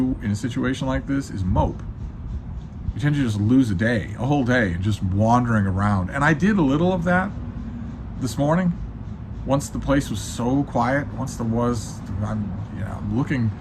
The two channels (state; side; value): identical; both; correlation 1.00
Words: in a situation like this is mope. You tend to just lose a whole day, just wandering around. And I did a little of that this morning. Once the place was so quiet, I'm looking